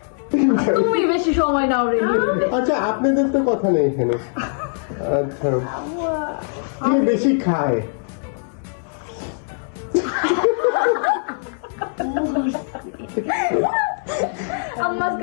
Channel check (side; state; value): right; silent; 65 dB below the other